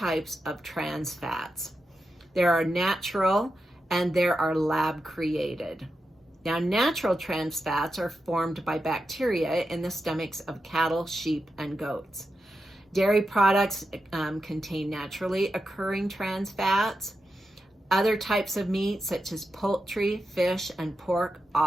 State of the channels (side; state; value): both; normal; correlation 0.89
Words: of trans fats. There are natural and there are lab created. Now, natural trans fats are formed by bacteria in the stomachs of cattle, sheep, and goats. Dairy products contain naturally occurring trans fats. Other types of meat, such as poultry, fish, and pork,